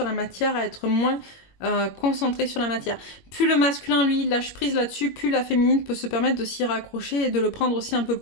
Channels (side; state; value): right; late; 21 ms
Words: la matière, à être moins concentré sur la matière. Plus le masculin, lui, lâche prise là-dessus, plus la féminine peut se permettre de s'y raccrocher et de le prendre aussi un peu